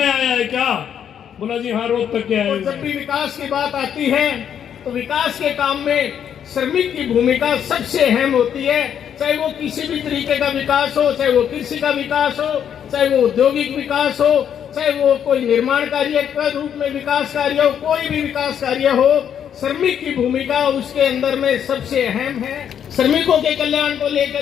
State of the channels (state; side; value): quieter; right; 8.8 dB